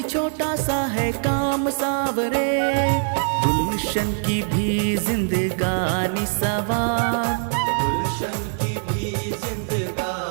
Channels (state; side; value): silent; left; 64 dB below the other